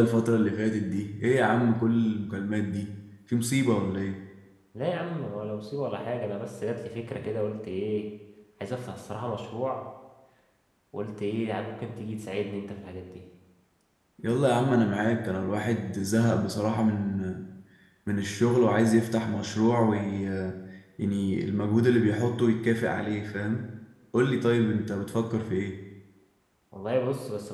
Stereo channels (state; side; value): identical; both; correlation 1.00